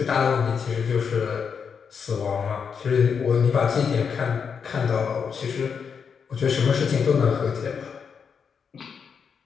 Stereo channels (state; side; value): quieter; right; 6.4 dB